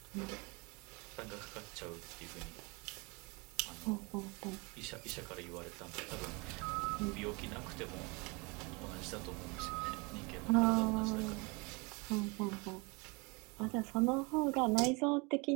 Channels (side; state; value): left; quieter; 28.6 dB